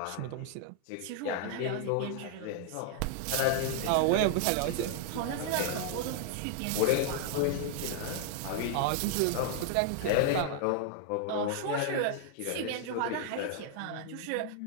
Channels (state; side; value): different; both; correlation 0.00